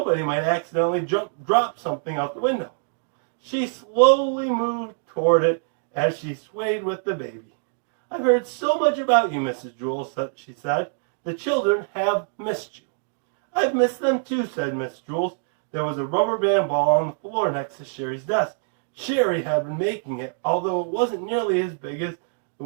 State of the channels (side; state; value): left; silent; digital silence